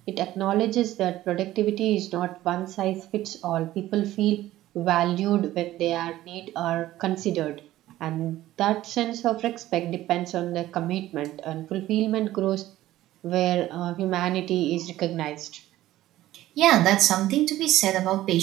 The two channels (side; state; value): left; quieter; 14.9 dB